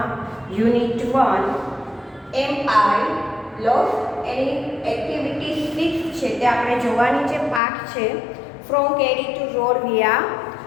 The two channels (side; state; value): right; drops out; at 7.6 s